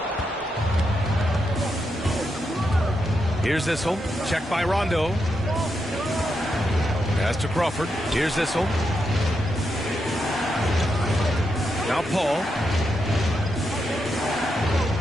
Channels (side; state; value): both; normal; correlation 0.84